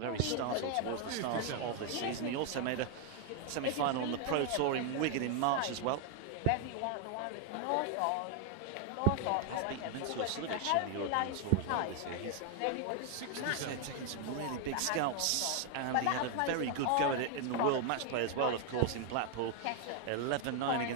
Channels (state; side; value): different; both; correlation 0.00